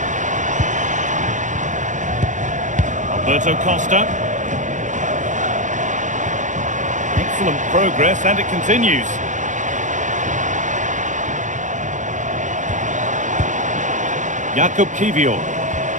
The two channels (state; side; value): late; left; 0.36 ms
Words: Alberto Costa. Excellent progress, and it continues. Jakub Kiwior.